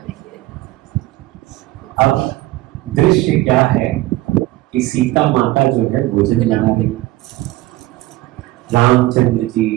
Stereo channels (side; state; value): left; quieter; 17.8 dB